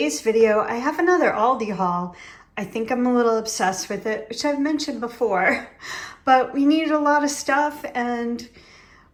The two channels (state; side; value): identical; both; correlation 1.00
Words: video I have another Aldi haul. I think I'm a little obsessed with it, which I've mentioned before, but we needed a lot of stuff and